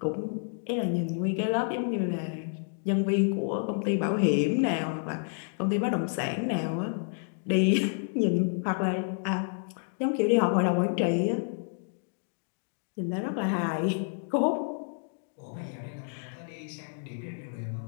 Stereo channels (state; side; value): silent; right; 58 dB below the other